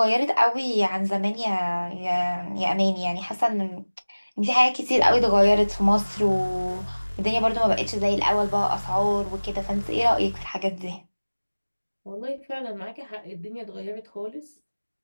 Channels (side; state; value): both; inverted; correlation -1.00